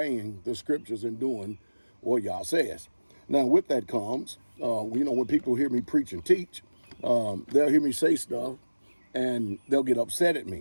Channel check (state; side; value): inverted; both; correlation -1.00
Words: the scriptures and doing what Yah says. Now, with that comes, when people hear me preach and teach, they'll hear me say stuff and they'll get upset at